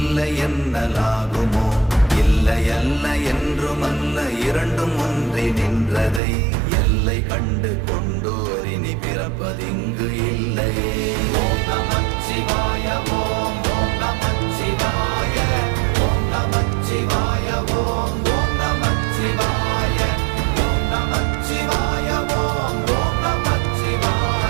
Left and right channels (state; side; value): drops out; left; at 6.2 s